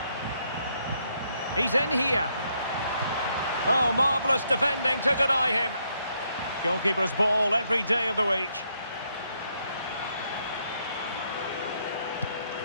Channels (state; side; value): inverted; both; correlation -0.75